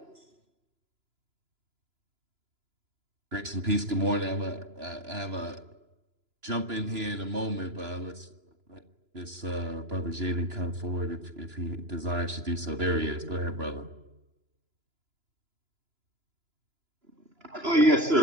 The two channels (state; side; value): late; left; 2.9 ms